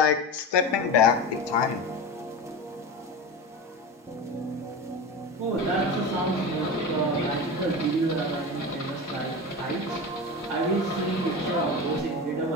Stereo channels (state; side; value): normal; both; correlation 0.26